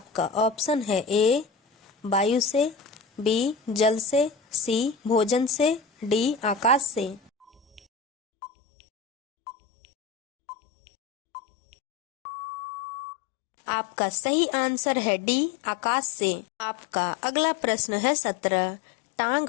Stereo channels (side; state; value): right; drops out; at 7.8 s